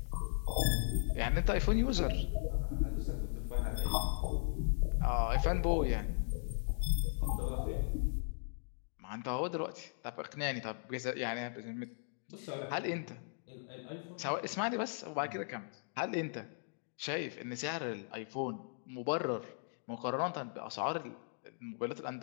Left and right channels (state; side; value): silent; right; digital silence